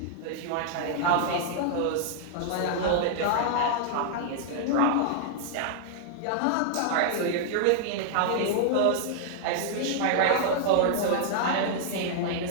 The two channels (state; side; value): different; both; correlation -0.01